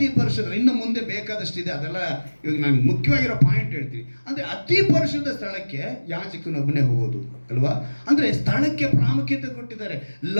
ಪರಿಶುದ್ಧ. ಇನ್ನು ಮುಂದೆ ಬೇಕಾದಷ್ಟಿದೆ, ಅದೆಲ್ಲ ಇವಾಗ ನಾನು ಮುಖ್ಯವಾಗಿರೋ ಪಾಯಿಂಟ್ ಹೇಳ್ತೀನಿ. ಅಂದರೆ ಅತಿ ಪರಿಶುದ್ಧ ಸ್ಥಳಕ್ಕೆ ಯಾಜಕನೊಬ್ಬನೇ ಹೋಗೋದು ಅಲ್ವಾ? ಅಂದರೆ ಸ್ಥಳಕ್ಕೆ ಪ್ರಾಮುಖ್ಯತೆ ಕೊಟ್ಟಿದ್ದಾರೆ.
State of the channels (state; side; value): inverted; both; correlation -1.00